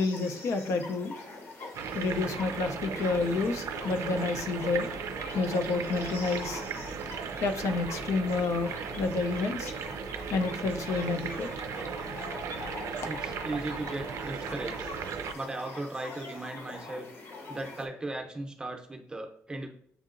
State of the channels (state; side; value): normal; both; correlation 0.62